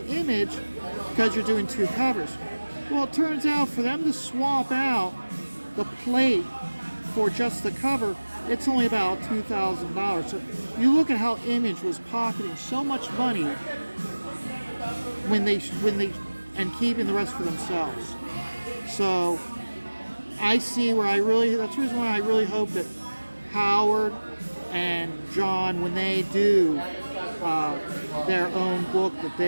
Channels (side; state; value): both; inverted; correlation -1.00